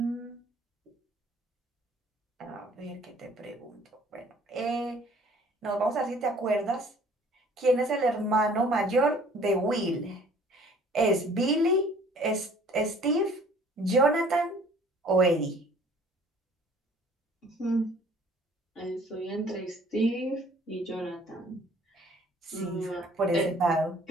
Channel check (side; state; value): both; normal; correlation 0.54